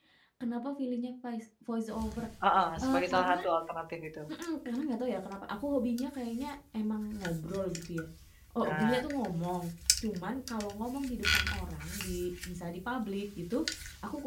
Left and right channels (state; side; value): identical; both; correlation 1.00